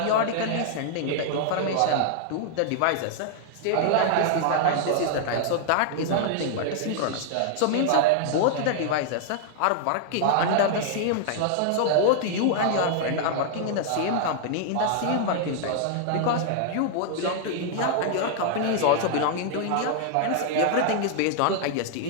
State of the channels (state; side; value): different; both; correlation -0.01